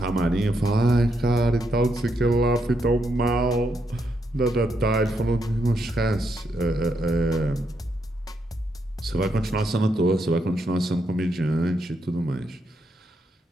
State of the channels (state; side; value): normal; both; correlation 0.79